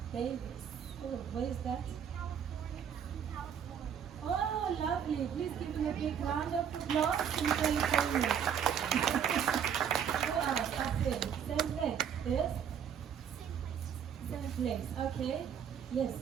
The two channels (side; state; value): left; quieter; 8.1 dB